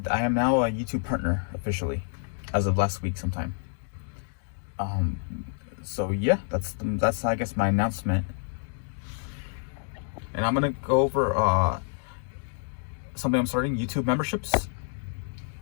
I am now a YouTube partner officially, as of last week sometime. So yeah, that's I guess my announcement. And I'm gonna go over something I'm starting, YouTube memberships,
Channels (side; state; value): right; silent; digital silence